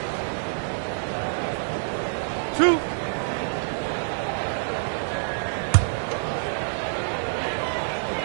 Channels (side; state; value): left; silent; digital silence